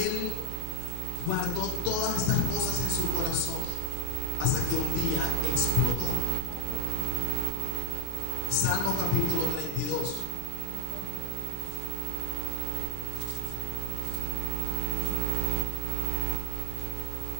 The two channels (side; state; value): both; different; correlation 0.00